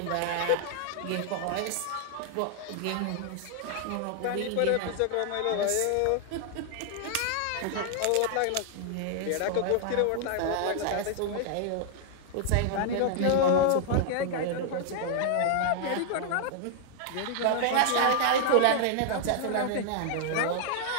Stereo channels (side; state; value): both; different; correlation 0.00